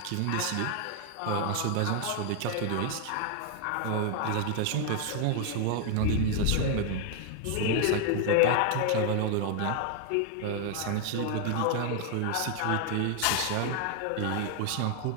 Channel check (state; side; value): different; both; correlation 0.00